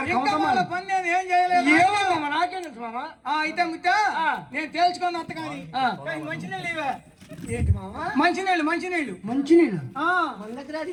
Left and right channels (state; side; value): identical; both; correlation 1.00